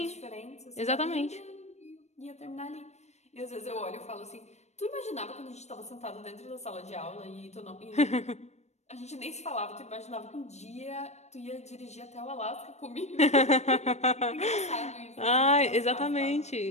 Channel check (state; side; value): late; right; 0.32 ms